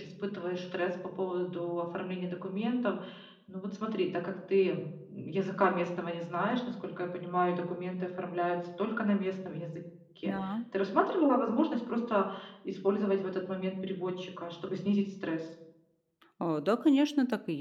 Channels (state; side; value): identical; both; correlation 1.00